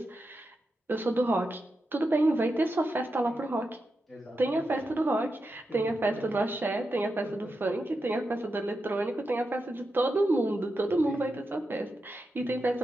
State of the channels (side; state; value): both; normal; correlation 0.88